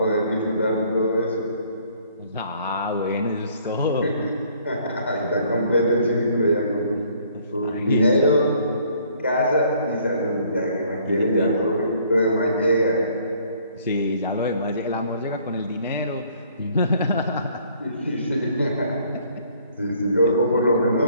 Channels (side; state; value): both; inverted; correlation -0.61